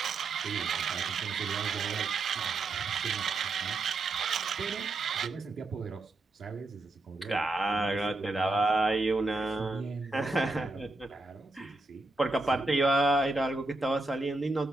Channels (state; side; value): quieter; left; 3.1 dB